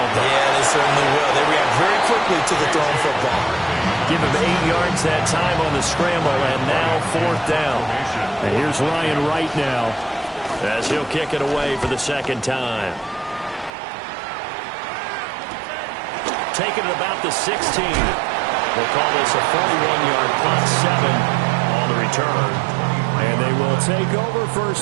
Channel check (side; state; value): left; drops out; at 13.7 s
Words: they? Yeah, they certainly will. They react very quickly to the thrown football. Give him 8 yards that time on the scramble, and now 4th down. And here's Ryan Wright now, as he'll kick it away for the second time. Taking it about the 16. We'll call this a 41-yard punt, 7 on the return. And they will take over